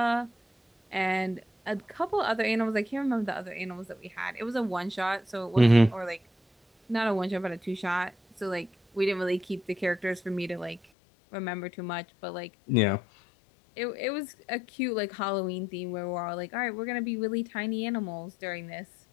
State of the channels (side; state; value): right; drops out; at 10.8 s